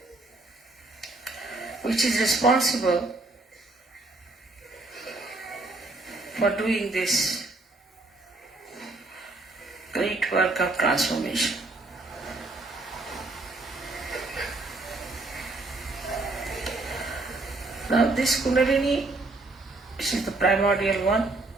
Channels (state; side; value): quieter; left; 3.0 dB